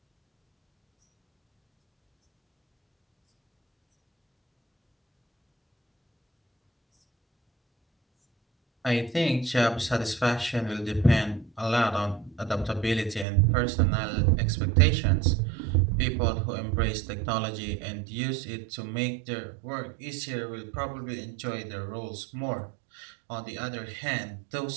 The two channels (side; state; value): left; drops out; at 13.2 s